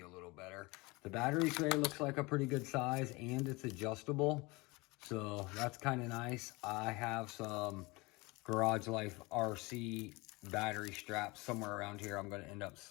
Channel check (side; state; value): right; quieter; 24.3 dB